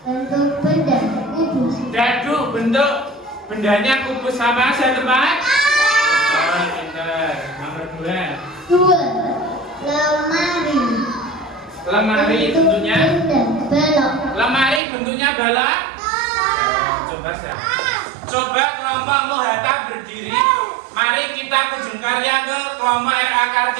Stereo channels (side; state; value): left; drops out; at 14.8 s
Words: Bentuk benda, kubus. Dadu, bentuk bendanya kubus sama. Sudah tepat? Oh, pintar. Nomor 2. Dua, lemari. Lemari bentuknya? Balok. Lemari bentuknya balok? Coba saya. Coba kelompok Hatta berdiri. Mari kita kunjung karya ke kelompok RA